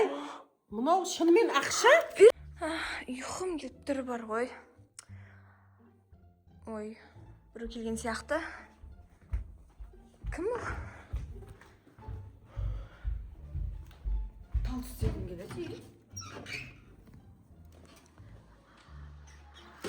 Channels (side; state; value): both; identical; correlation 1.00